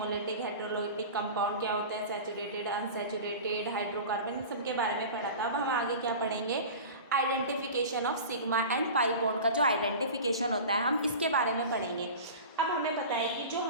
हेटेरोलिटिक कंपाउंड क्या होता है, सैचुरेटेड अनसैचुरेटेड हाइड्रोकार्बन, इन सब के बारे में पढ़ा था। अब हम आगे क्या पढ़ेंगे, identification of sigma and pi bond का जो आइडेंटिफिकेशन होता है हम इसके बारे में पढ़ेंगे। अब हमें पता है कि जो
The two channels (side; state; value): both; inverted; correlation -0.34